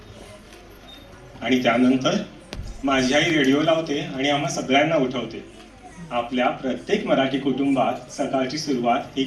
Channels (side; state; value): both; identical; correlation 1.00